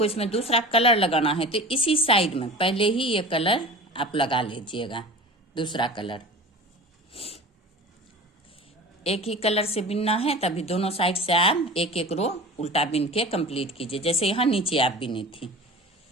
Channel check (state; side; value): normal; both; correlation 0.36